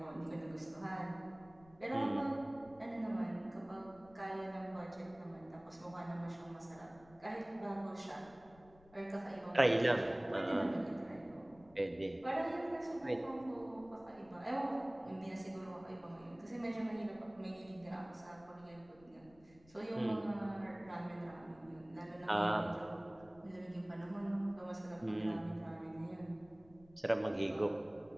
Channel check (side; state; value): left; noise; rumble, 25 dB below the sound